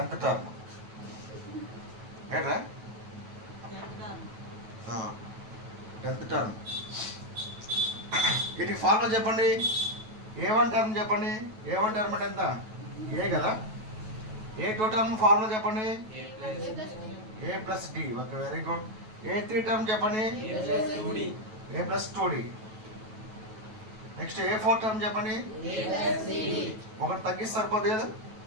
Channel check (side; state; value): left; late; 9.2 ms